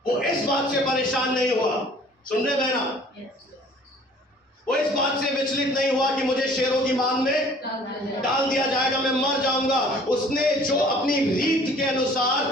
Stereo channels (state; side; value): normal; both; correlation 0.53